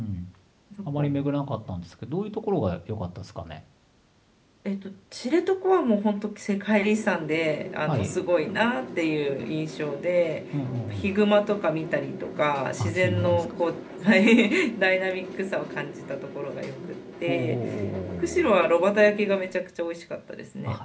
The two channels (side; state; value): both; identical; correlation 1.00